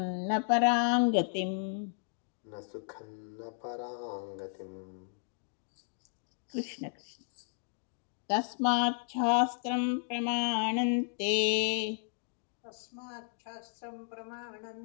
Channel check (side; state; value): right; silent; digital silence